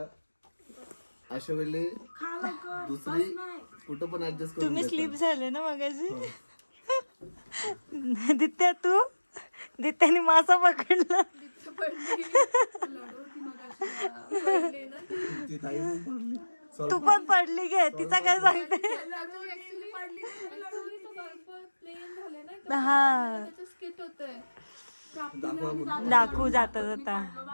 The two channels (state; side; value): inverted; both; correlation -1.00